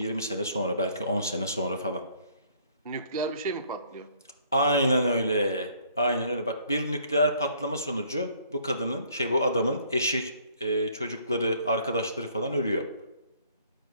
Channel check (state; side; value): inverted; both; correlation -0.61